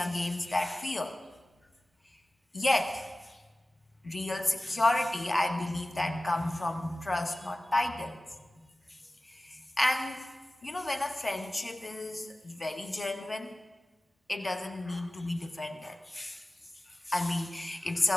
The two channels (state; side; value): normal; both; correlation 0.96